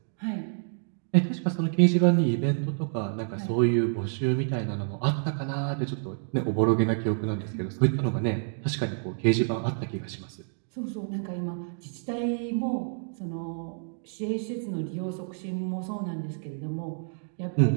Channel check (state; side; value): silent; left; digital silence